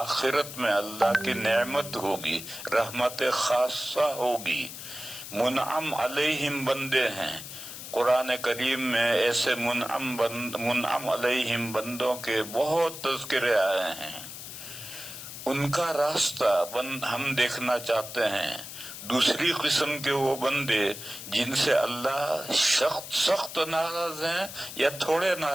میں اللہ کی نعمت ہوگی، رحمت خاصہ ہوگی. منعم علیہم بندے ہیں. قرآن کریم میں ایسے منعم علیہم بندوں کے بہت تذکرے آئے ہیں. ان کا راستہ ہم دیکھنا چاہتے ہیں. دوسری قسم کے وہ بندے جن سے اللہ سخت ناراض ہیں یا تھوڑے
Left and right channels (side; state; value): left; noise; hiss, 11 dB below the sound